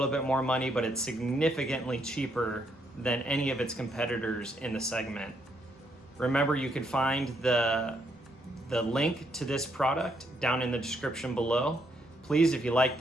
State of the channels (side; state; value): both; normal; correlation 0.74